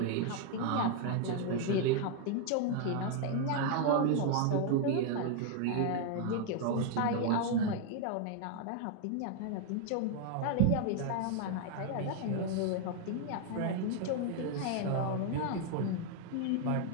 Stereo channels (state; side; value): different; both; correlation 0.00